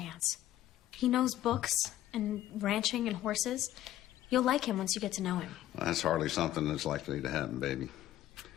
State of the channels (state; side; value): quieter; right; 13.3 dB